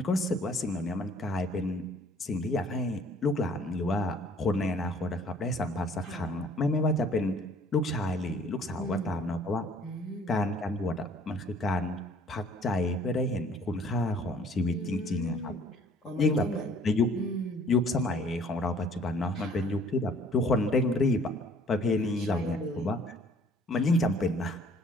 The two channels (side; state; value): both; normal; correlation 0.56